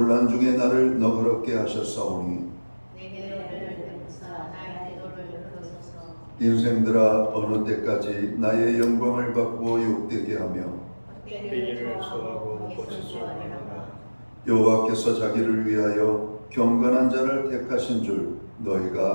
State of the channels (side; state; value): both; inverted; correlation -1.00